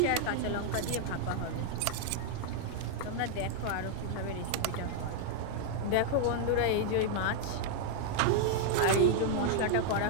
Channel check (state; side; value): different; both; correlation -0.01